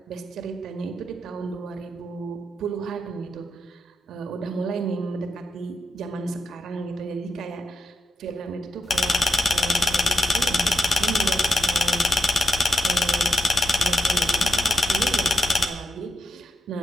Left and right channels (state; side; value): normal; both; correlation 0.86